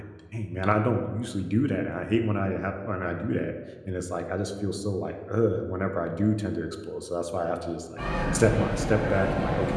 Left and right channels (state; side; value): identical; both; correlation 1.00